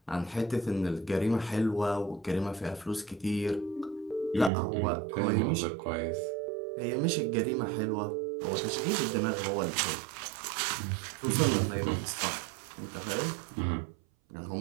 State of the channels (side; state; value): left; drops out; at 4.5 s